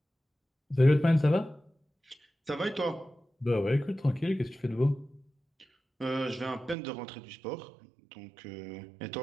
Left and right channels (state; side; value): drops out; left; at 6.8 s